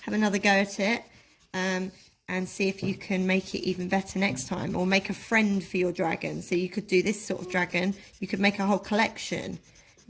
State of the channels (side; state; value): both; identical; correlation 1.00